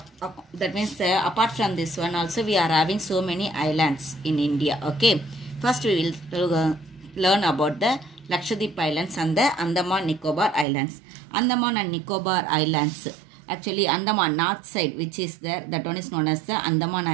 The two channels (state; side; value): drops out; left; at 10.7 s